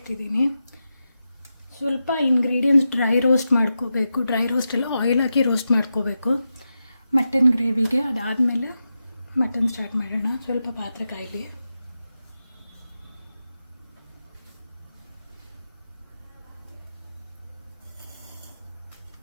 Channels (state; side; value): inverted; both; correlation -0.89